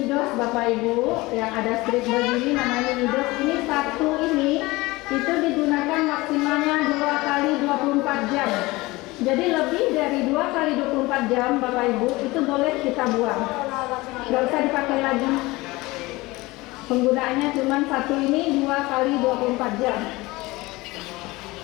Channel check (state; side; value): quieter; right; 21.2 dB